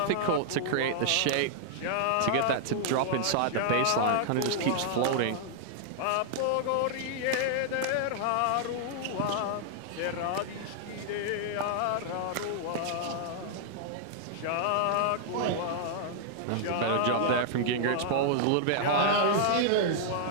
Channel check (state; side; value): different; both; correlation -0.01